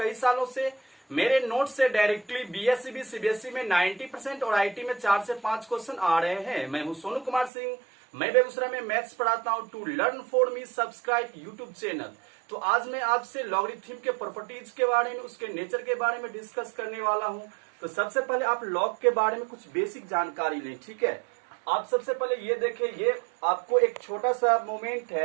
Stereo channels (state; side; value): drops out; left; at 7.5 s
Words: सालों से मेरे नोट से डायरेक्टली बीएससी भी सीबीएसई में 90% और आईटी में 4 से 5 क्वेश्चन आ रहे हैं। मैं हूं सोनू कुमार सिंह, मैं बेगूसराय में मैथ्स पढ़ाता हूं। To learn for me subscribe YouTube channel. तो आज मैं आपसे लॉगरिथम के प्रॉपर्टीज के बारे में, उसके नेचर के बारे में डिस्कस करने वाला हूं। तो सबसे पहले आप लॉग के बारे में कुछ बेसिक जानकारी लें, ठीक है। आप सबसे पहले ये देखें, ये आपको एक छोटा सा मोमेंट